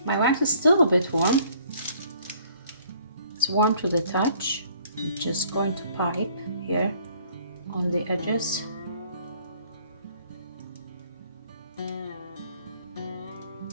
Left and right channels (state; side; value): inverted; both; correlation -0.58